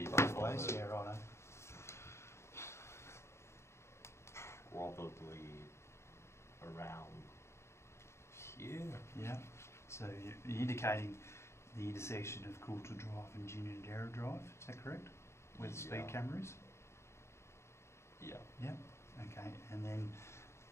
look both ways. Yeah, righto. Probably around here. Yeah. So you're indicating the intersection of Coulter Drive and Ginninderra Drive. Is that correct? Where the speed camera is. Yeah. Yeah. Okay. And then,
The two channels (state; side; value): late; right; 0.13 ms